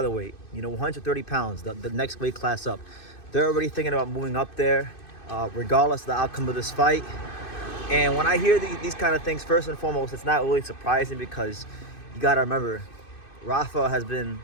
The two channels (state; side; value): late; right; 2.6 ms